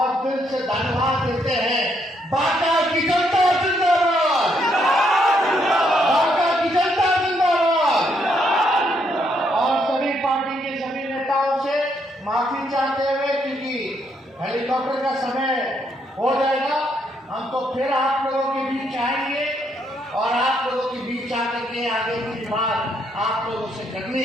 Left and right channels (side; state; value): both; normal; correlation 0.74